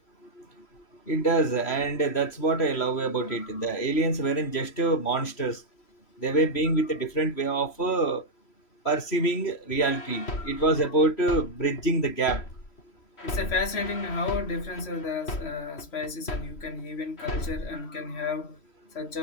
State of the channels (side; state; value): right; late; 3.1 ms